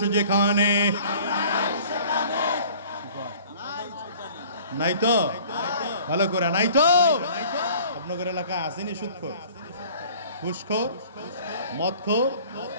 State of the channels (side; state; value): both; inverted; correlation -0.50